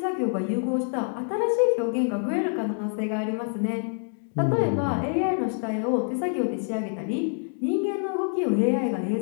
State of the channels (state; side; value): silent; right; 61 dB below the other